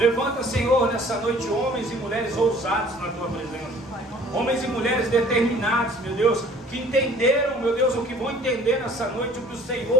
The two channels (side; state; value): both; normal; correlation 0.52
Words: Senhor, nessa noite homens e mulheres ousados na tua presença. Homens e mulheres determinados, meu Deus, que entenderam, meu Deus, o que vão entender nessa noite, o que o